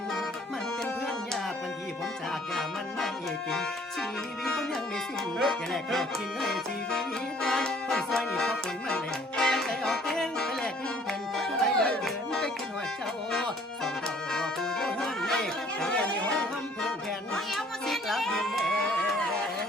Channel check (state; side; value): normal; both; correlation 0.58